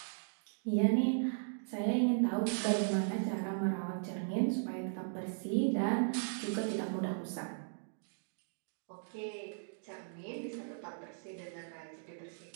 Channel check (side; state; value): left; silent; digital silence